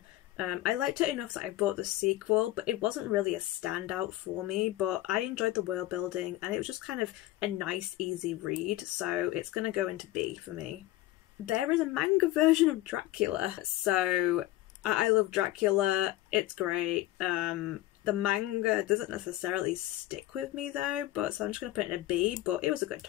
I liked it enough that I bought the sequel, but it wasn't really a standout for me, but I enjoyed the world building and it was just kind of a nice easy read, so it's gonna go into B for me. There is a manga version of Dracula, so I love Dracula, it's great. The manga doesn't necessarily stick with me though, but so I'm just gonna put it in a B, but it was a good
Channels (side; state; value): right; quieter; 16.1 dB